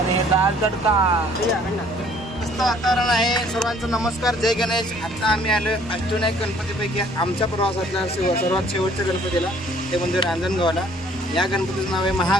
दाल तडका. मस्त वातावरण आहे. सर्वांचा नमस्कार. जय गणेश. आता आम्ही आलो अष्टविनायक गणपतीपैकी आमच्या प्रवासातल्या सर्वात शेवटच्या गणपतीला, ते म्हणजे रांजणगावला. या गणपतीचं नाव आहे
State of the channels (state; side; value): normal; both; correlation 0.59